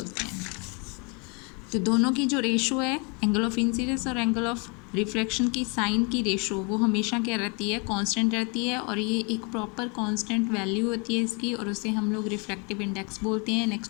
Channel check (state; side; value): quieter; right; 32.5 dB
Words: हैं। तो दोनों की जो रेशो है एंगल ऑफ इंसिडेंस और एंगल ऑफ रिफ्रैक्शन की साइन की रेशो वो हमेशा क्या रहती है, कांस्टेंट रहती है, और ये एक प्रॉपर कांस्टेंट वैल्यू होती है इसकी, और उसे हम लोग रिफ्रैक्टिव इंडेक्स बोलते हैं।